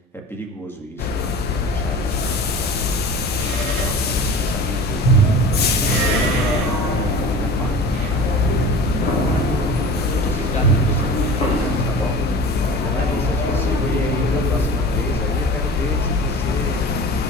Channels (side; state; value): both; normal; correlation 0.37